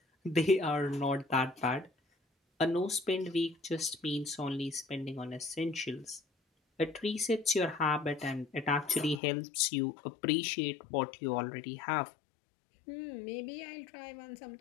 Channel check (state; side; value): drops out; right; at 9.2 s